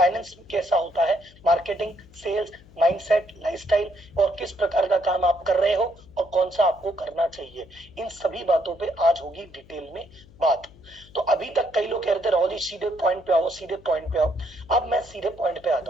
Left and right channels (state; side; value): noise; left; hum, 24 dB below the sound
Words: कैसा होता है, मार्केटिंग, सेल्स, माइंडसेट, लाइफस्टाइल, और किस प्रकार का काम आप कर रहे हो और कौन सा आपको करना चाहिए, इन सभी बातों पे आज होगी डिटेल में बात। तो अभी तक कई लोग कह रहे थे राहुल जी सीधे पॉइंट पे आओ, सीधे पॉइंट पे आओ। अब मैं सीधे पॉइंट पे आता